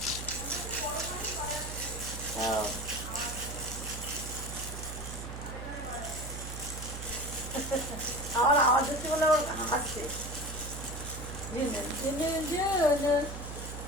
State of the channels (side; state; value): right; noise; hum, 8 dB below the sound